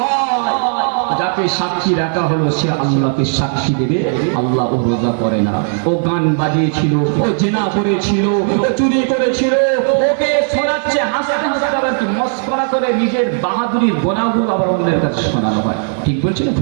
যাকে সাক্ষী রাখা হলো সে আল্লাহকে সাক্ষী দেবে, আল্লাহ ও রোজা করে না, ও গান বাজিয়েছিল, ও জেনা করেছিল, ও চুরি করেছিল, ওকে শোনাচ্ছে হাসতে হাসতে, আবার কি মস্করা করে নিজের বাহাদুরির গোনাগুলো আবার অন্যের কাছে শোনানো হয়। ঠিক বলছে না?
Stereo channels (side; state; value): left; silent; 67 dB below the other